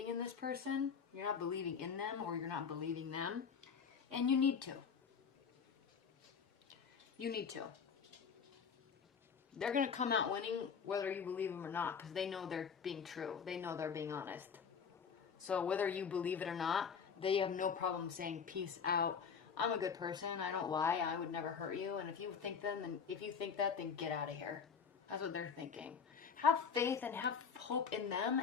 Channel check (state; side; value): quieter; right; 6.4 dB